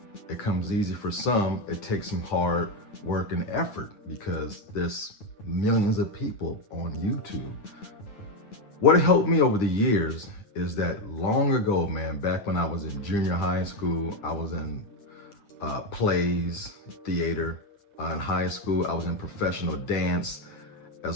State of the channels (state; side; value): late; right; 9.3 ms